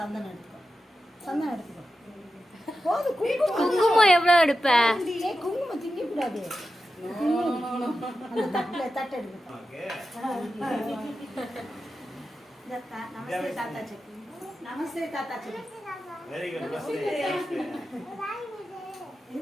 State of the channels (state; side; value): normal; both; correlation 0.91